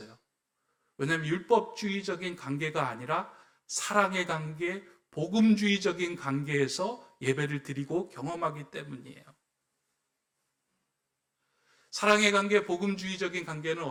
왜냐하면 율법주의적인 관계가 아니라 사랑의 관계, 복음주의적인 관계에서 예배를 드리고 경험하기 때문이에요. 사랑의 관계, 복음주의적인 관계는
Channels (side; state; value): both; identical; correlation 1.00